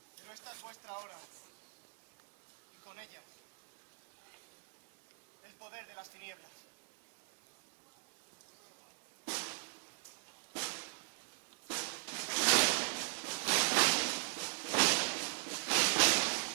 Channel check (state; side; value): silent; left; digital silence